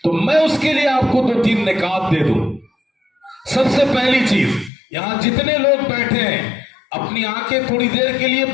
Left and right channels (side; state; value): right; drops out; at 4.7 s